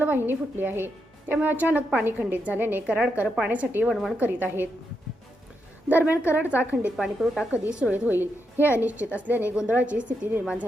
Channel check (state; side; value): normal; both; correlation 0.83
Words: फुटली आहे. त्यामुळे अचानक पाणी खंडित झाल्याने कराडकर पाण्यासाठी वणवण करीत आहेत. दरम्यान कराडचा खंडित पाणीपुरवठा कधी सुरळीत होईल हे अनिश्चित असल्याने गोंधळाची स्थिती निर्माण